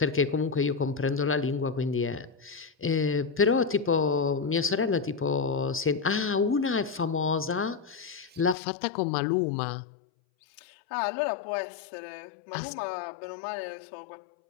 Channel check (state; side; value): drops out; right; at 8.6 s